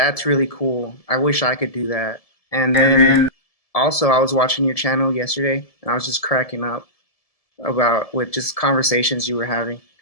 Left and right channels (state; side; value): late; right; 1.7 ms